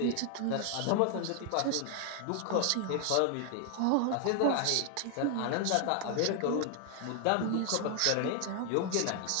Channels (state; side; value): different; both; correlation 0.00